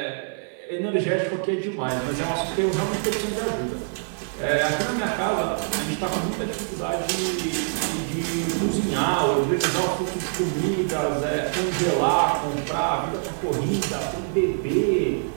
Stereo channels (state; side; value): silent; left; 57 dB below the other